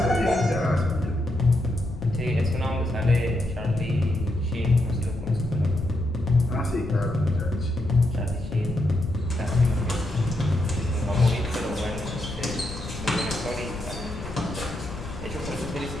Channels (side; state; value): left; noise; rumble, 11 dB below the sound